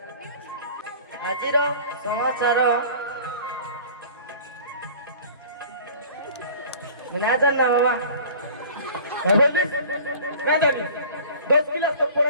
ଆଜିର ସମାଚାର ନା ଜାଣିନା ବାବା ना जानी 10 क्लास तक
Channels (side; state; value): both; inverted; correlation -0.44